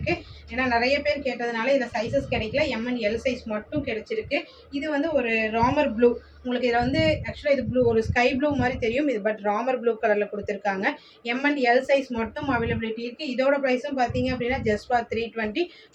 ஏன்னா நிறைய பேர் கேட்டதுனால இதில் சைஸஸ் கிடைக்கல. M and L சைஸ் மட்டும் கிடைச்சிருக்கு. இது வந்து ஒரு ராமர் ப்ளூ. உங்களுக்கு இதில் வந்து ஆக்சுவலாக இது ப்ளூ, ஒரு ஸ்கை ப்ளூ மாதிரி தெரியும் இது, பட் ராமர் ப்ளூ கலரில் கொடுத்துருக்காங்க. M and L சைஸ் மட்டும் அவைலபிலிட்டி இருக்குது. இதோட ப்ரைஸும் பார்த்தீங்க அப்படின்னா just for 320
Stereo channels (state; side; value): identical; both; correlation 1.00